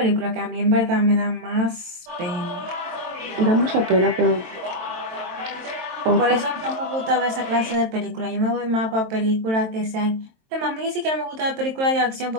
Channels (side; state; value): left; late; 23 ms